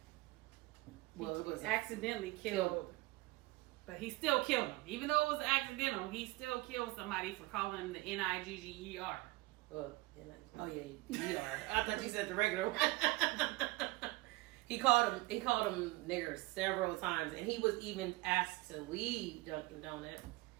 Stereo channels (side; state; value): left; quieter; 21.2 dB